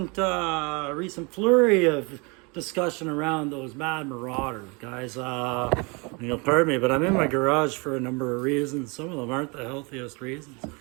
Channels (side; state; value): left; quieter; 30.0 dB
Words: flurry of discussion around those mad marauders, guys. Pardon me, but I'm in my garage for a number of reasons. Some of them aren't the healthiest reasons. You